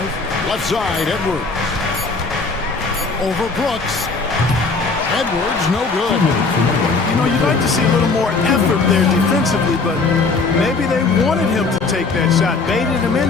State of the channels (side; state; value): right; quieter; 4.1 dB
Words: Left side, Edwards. Over Brooks. Edwards, no good. You know, you'd like to see a little more effort there defensively, but maybe they wanted him to take that shot, baited him